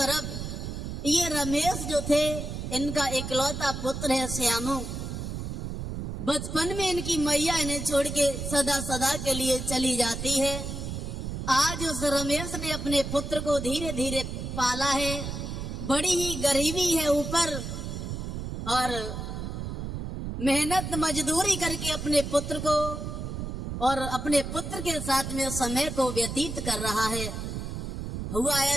ये रमेश जो थे, इनका इकलौता पुत्र है श्यामू। बचपन में इनकी मैया इन्हें छोड़ के सदा सदा के लिए चली जाती है। आज उस रमेश ने अपने पुत्र को धीरे धीरे पाला है। बड़ी ही गरीबी है ऊपर, और मेहनत मजदूरी करके अपने पुत्र को और अपने पुत्र के साथ में समय को व्यतीत कर रहा है। हुआ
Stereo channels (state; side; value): noise; right; rumble, 5 dB below the sound